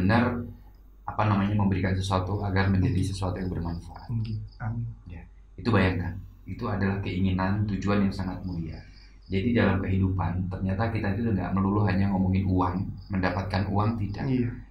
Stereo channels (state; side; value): identical; both; correlation 1.00